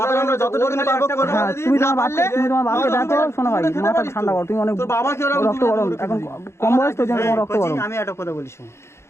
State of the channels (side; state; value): right; late; 0.13 ms